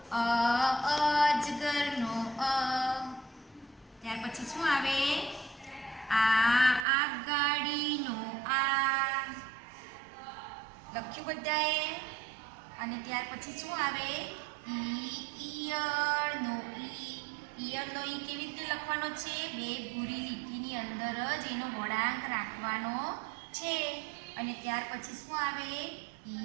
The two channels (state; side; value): drops out; left; at 6.9 s